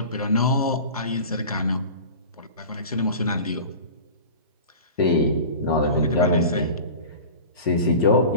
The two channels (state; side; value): inverted; both; correlation -0.36